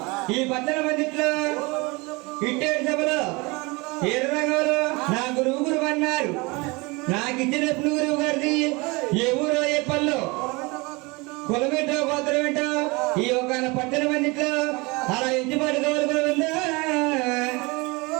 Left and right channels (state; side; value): quieter; left; 25.9 dB